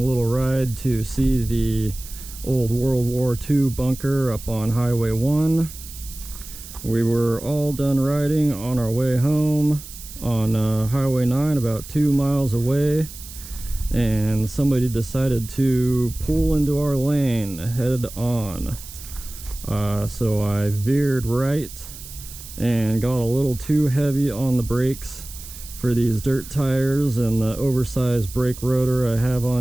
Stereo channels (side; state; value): right; noise; hiss, 15 dB below the sound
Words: little ride to see the old World War II bunker up on Highway 1. We were all done riding on our way home on Highway 9, about 2 miles away, and somebody decided to pull into our lane head on. So I veered right and got a little too heavy on the brakes for these dirt tires and the oversized brake rotor I have